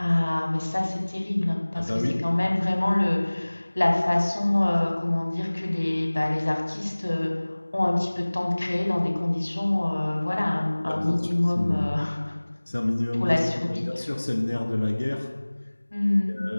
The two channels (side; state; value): both; inverted; correlation -1.00